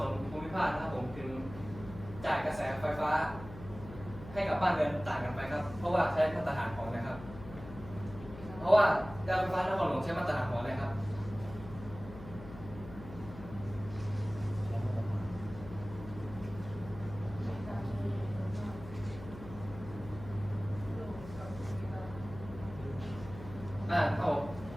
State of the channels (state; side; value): noise; left; hum, 14 dB below the sound